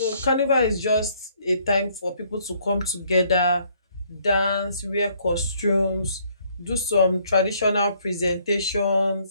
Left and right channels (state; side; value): inverted; both; correlation -0.65